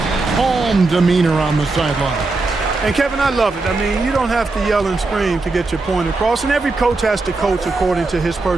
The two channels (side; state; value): left; quieter; 3.5 dB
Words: calm demeanor on the sideline. And, Kevin, I love it. I mean, you don't have to yell and scream to get your point across, and every coach has to coach according to his